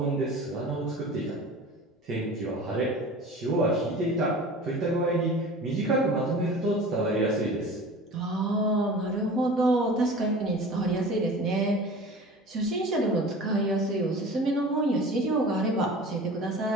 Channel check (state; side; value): normal; both; correlation 0.39